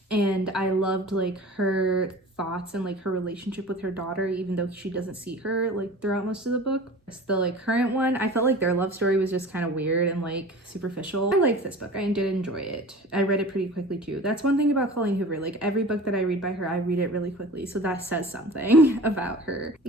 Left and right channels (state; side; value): normal; both; correlation 0.39